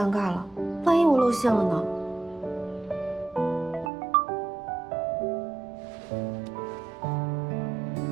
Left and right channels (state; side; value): drops out; left; at 3.9 s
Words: 尬了，万一我露馅了呢？